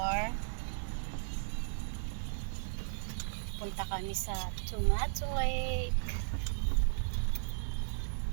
punta kami sa Tomato Lake.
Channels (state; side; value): silent; left; digital silence